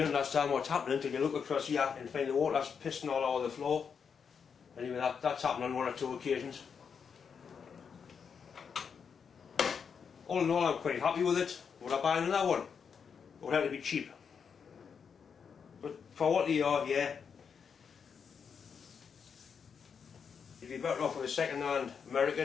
understand what's happening until you look across here and find the water's pissing all over the floor. Anyway, that's happened on one or two occasions. All in all, I'm quite happy with it. Would I buy another one? It would have to be cheap. But for what they are, yeah. You'd be better off with a second-hand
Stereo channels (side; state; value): right; quieter; 6.5 dB